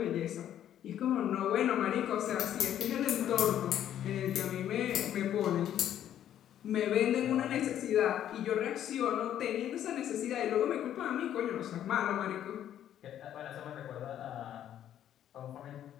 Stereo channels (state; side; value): quieter; right; 10.8 dB